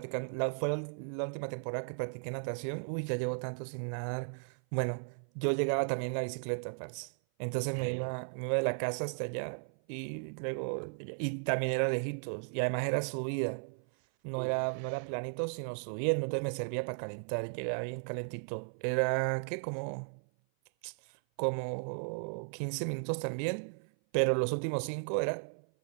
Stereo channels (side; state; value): left; silent; 54 dB below the other